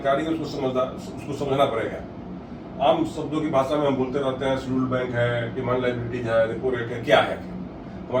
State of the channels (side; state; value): both; identical; correlation 1.00